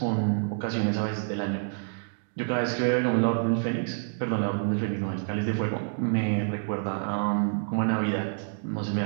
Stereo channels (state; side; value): silent; left; digital silence